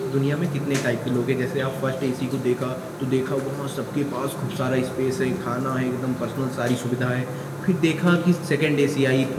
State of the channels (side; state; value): both; identical; correlation 1.00